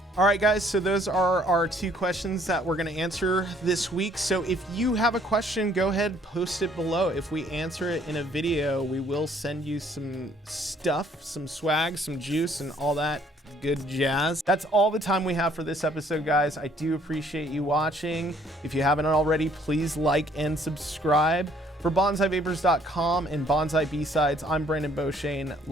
All right, guys, so those are our 2 questions that we're going to answer this week. So if you have a question, go ahead, post it below. If we answer it in a video, we will send you some stuff, some swag, some juice, and all that good jazz. That's all the time we have for this episode, guys. I do appreciate you watching. If you haven't already, please like and subscribe. For BanzaiVapors.com and Banzai B-Sides, I'm Brandon Beauchesne.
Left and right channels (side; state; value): both; normal; correlation 0.62